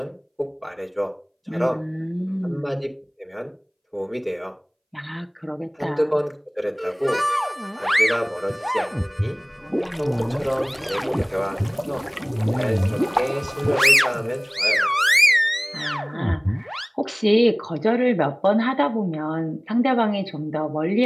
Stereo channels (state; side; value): identical; both; correlation 1.00